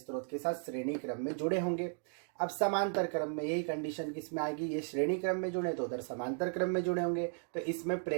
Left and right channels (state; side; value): silent; left; 54 dB below the other